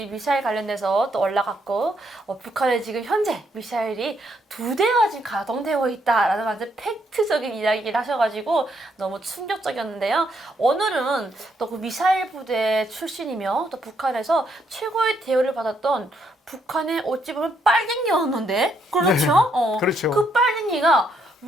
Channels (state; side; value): normal; both; correlation 0.74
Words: 미사일 관련돼서 또 올라갔고 북한에 지금 현재 미사일이 2대가 지금 가동되고 있다라는 완전 팩트적인 이야기를 하셔가지고 너무 충격적이었는데요. 오늘은 또 그 미사일 부대 출신이며 또 북한에서 최고의 대우를 받았던 북한의 어찌 보면 빨갱이였는데 그렇죠? 네, 그렇죠. 그 빨갱이가